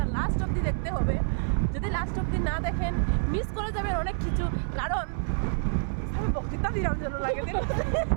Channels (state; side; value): silent; left; digital silence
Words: লাস্ট অবধি দেখতে হবে। যদি লাস্ট অবধি না দেখেন, মিস করে যাবেন অনেক কিছু। কারণ বক্তৃতা দিলাম জন্য আগে দিন।